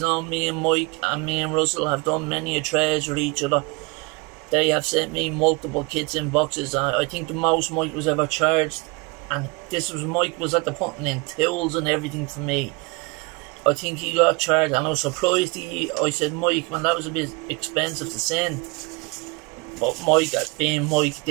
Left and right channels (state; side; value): quieter; left; 27.8 dB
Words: me and Mike and me and Russell have done many a trades with each other. They have sent me multiple kits in boxes. I think the most Mike was ever charged, and this was Mike was at the putting in tools and everything for me. I think he got charged, and I was surprised. I said, Mike, man, that was a bit expensive to send. But Mike, being Mike,